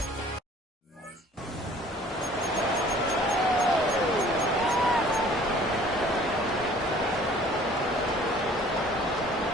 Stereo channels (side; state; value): both; normal; correlation 0.52